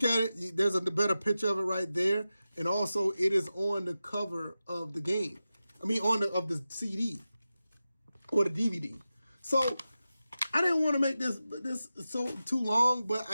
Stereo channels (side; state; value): both; inverted; correlation -0.93